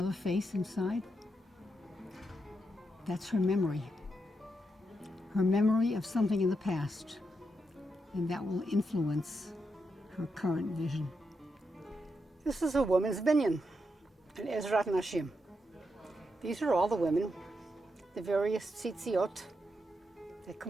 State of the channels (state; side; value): normal; both; correlation 0.83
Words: face inside? That's her memory of something in the past, and that will influence her current vision. This is a woman's binyan, an Ezrat Nashim. These are all the women, the various tzitziot that